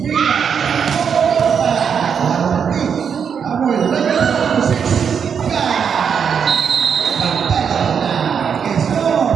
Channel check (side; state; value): left; quieter; 7.1 dB